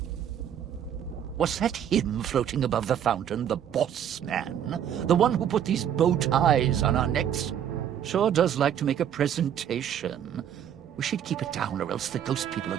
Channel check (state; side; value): quieter; left; 9.5 dB